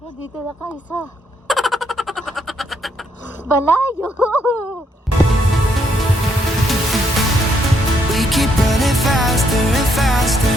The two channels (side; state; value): both; normal; correlation 0.73